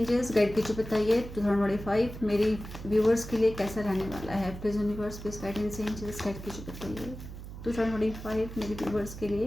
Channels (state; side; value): noise; right; hum, 12 dB below the sound